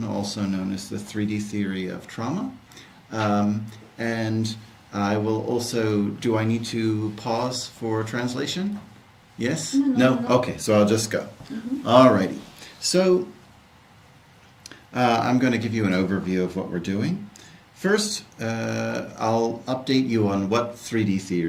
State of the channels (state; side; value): identical; both; correlation 1.00